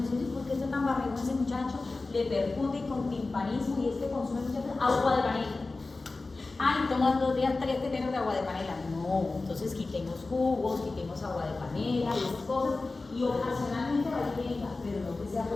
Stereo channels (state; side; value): quieter; right; 3.5 dB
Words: dice, ¿por qué está tan barrigón ese muchacho? Le percute con timpanismo y es que consume mucha agua de panela. Ay, toman 2 días 3 teteros de agua de panela. No, entonces quitemos jugos, quitemos agua de panela y esas cosas. Y ocasionalmente vainilla, pero no que sea